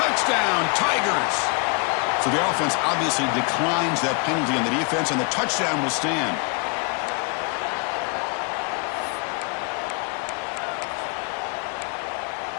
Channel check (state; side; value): quieter; right; 33.7 dB